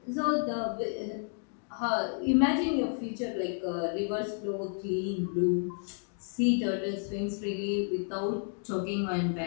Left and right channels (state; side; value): silent; right; 57 dB below the other